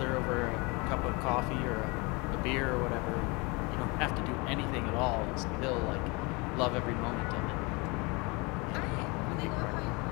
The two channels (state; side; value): quieter; right; 27.5 dB